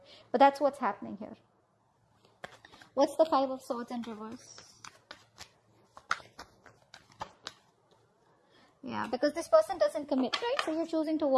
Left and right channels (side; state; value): both; identical; correlation 1.00